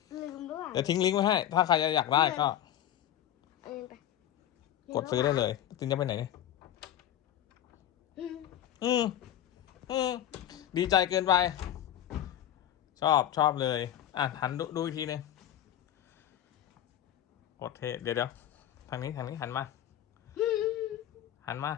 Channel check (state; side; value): quieter; right; 11.5 dB